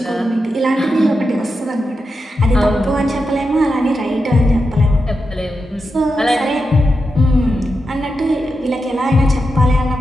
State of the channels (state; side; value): normal; both; correlation 0.88